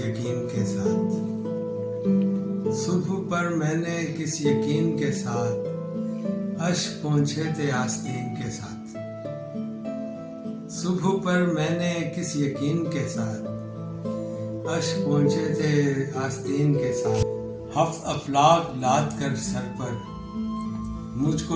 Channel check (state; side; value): identical; both; correlation 1.00